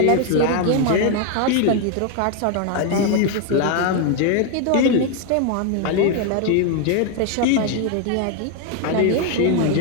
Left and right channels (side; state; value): both; different; correlation 0.01